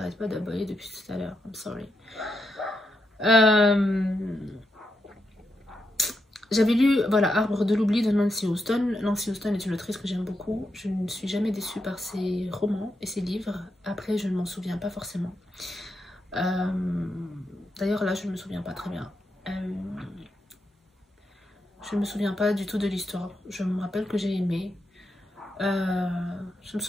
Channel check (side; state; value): both; normal; correlation 0.84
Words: pas d'aboyer depuis tout à l'heure. I'm sorry. J'avais lu, voilà, Arbre de l'oubli de Nancy Houston. Nancy Houston est une autrice que j'aime beaucoup. Je ne suis jamais déçue par ses romans et ses livres. Après, je ne m'en souviens pas forcément. D'ailleurs, là, je ne me souviens pas très bien. Je ne me souviens pas du tout de l'histoire. Je me rappelle que j'ai aimé. Je me